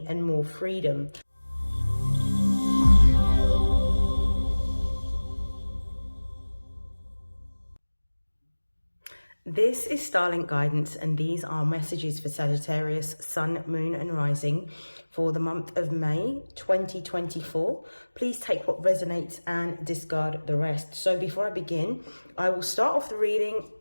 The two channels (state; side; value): inverted; both; correlation -1.00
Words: and more freedom. This is StarLink guidance, and these are messages for Sagittarius, Sun, Moon and Rising for the month of May 2024. Please take what resonates and discard the rest. So before I begin, I will start off the reading